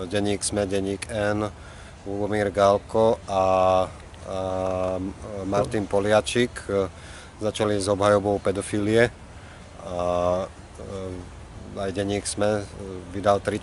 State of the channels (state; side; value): identical; both; correlation 1.00